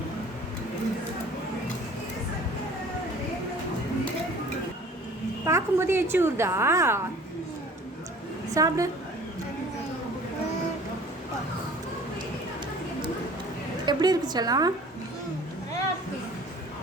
பார்க்கும்போது எச்சி ஊறுதா? சாப்பிடு. எப்படி இருக்கு செல்லம்?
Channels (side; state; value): both; normal; correlation 0.48